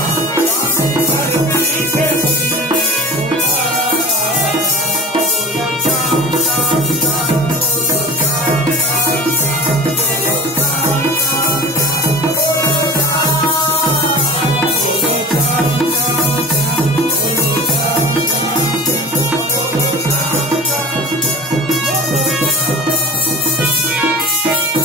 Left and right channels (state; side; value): normal; both; correlation 0.36